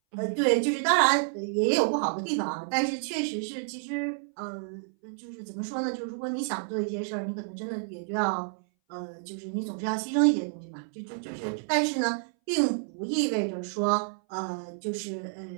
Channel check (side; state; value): left; silent; 58 dB below the other